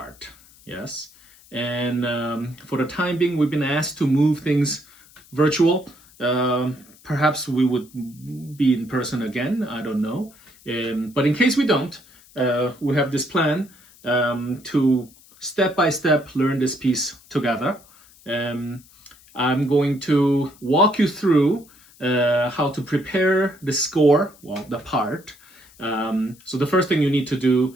yes? And for the time being, we've been asked to move things virtual. Perhaps we would be in person again, I don't know. But in case we don't, we have this plan to step by step learn this piece together. I'm going to walk you through how to prepare the score, well, the part. So the first thing you need to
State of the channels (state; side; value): noise; left; hiss, 26 dB below the sound